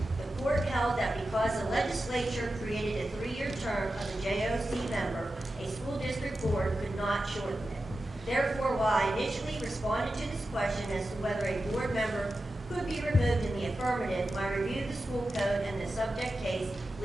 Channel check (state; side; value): normal; both; correlation 0.92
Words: The court held that because the legislature created a 3-year term of the JOC member, a school district board could not shorten it. Therefore, while I initially responded to this question as to whether a board member could be removed in the affirmative, my review of the school code and the subject case